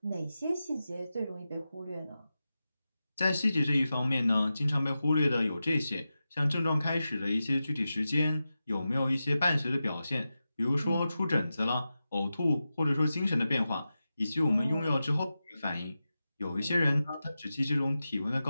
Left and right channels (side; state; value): both; inverted; correlation -0.92